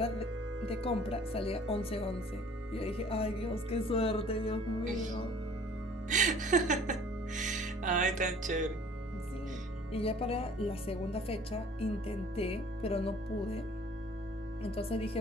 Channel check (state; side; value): normal; both; correlation 0.52